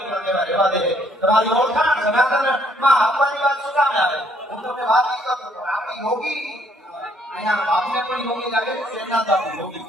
કેવા રહેવા દે. તમારી ઓળખાણ સનાતનમાં આપવાની વાત શું કામ આવે? હું તમને વાત નહીં કરતો પણ આપણી યોગી અહીંયા બાપને પણ યોગી લાગે છે, શેરનાથ બાપુ યોગી.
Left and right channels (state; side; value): normal; both; correlation 0.67